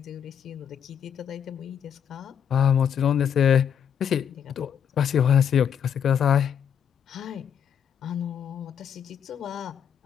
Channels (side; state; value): right; quieter; 8.3 dB